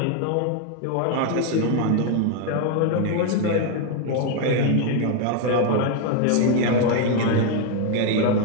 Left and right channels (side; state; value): both; different; correlation 0.01